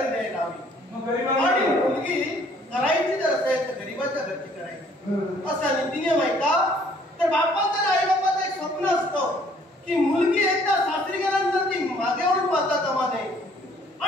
द्यायला हवी आणि मुलगी करायची जर असेल तर गरीबाच्या घरची करायची असा नीती नियम आहे का? तर बापाचं आणि आई बापाचं एक स्वप्न असतं की मुलगी एकदा सासरी गेल्यानंतर ती मागे वळून पाहता कामा नये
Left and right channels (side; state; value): both; normal; correlation 0.60